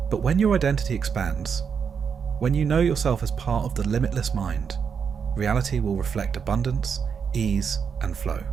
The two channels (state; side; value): quieter; left; 6.6 dB